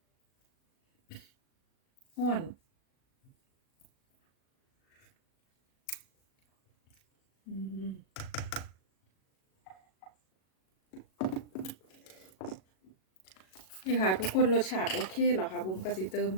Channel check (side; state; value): right; late; 37 ms